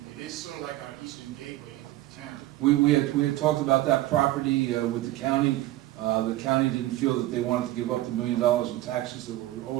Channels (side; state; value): left; quieter; 16.0 dB